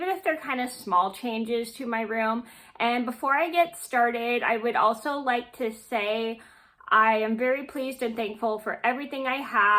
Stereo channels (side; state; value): both; identical; correlation 1.00